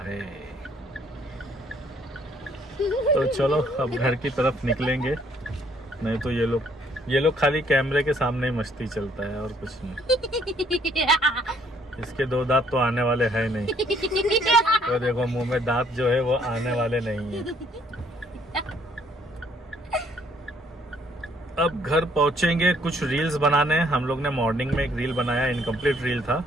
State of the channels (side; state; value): both; normal; correlation 0.65